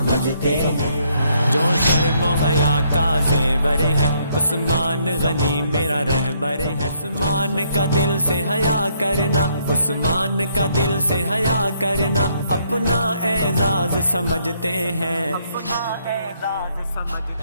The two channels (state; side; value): inverted; both; correlation -0.70